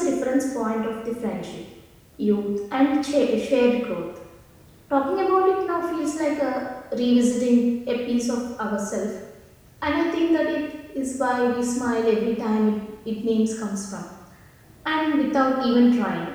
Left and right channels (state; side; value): identical; both; correlation 1.00